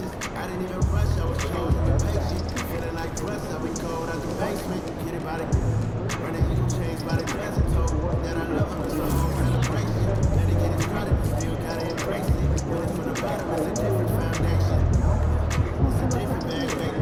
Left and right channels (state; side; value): identical; both; correlation 1.00